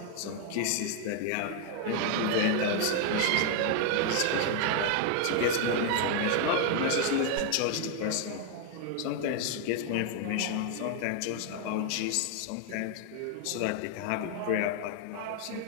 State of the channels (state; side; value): different; both; correlation 0.00